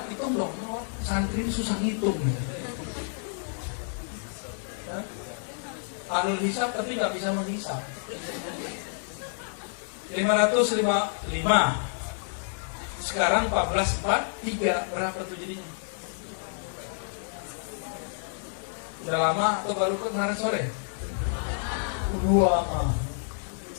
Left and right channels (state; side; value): silent; right; digital silence